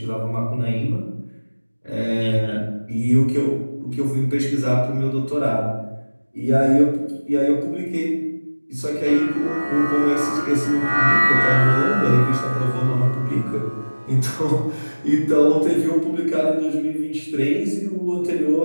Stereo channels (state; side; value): inverted; both; correlation -1.00